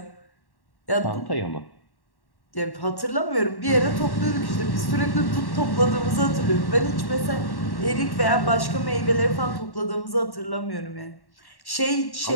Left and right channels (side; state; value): right; late; 1.1 ms